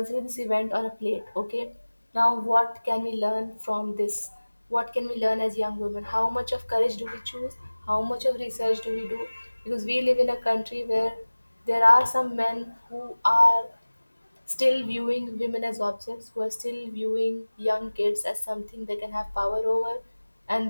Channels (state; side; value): inverted; both; correlation -1.00